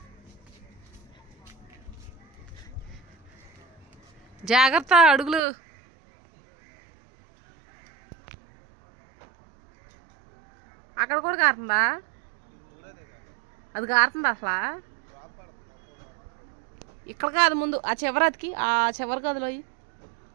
జాగ్రత్త, అడుగులు. అక్కడ కూడా కారుతుందా? అది కారుతుందా అసలు? ఇక్కడ కాదు, ముందు ఆ చివరి అతికి, ఆ చివరి గదిలో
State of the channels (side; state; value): left; drops out; at 5.4 s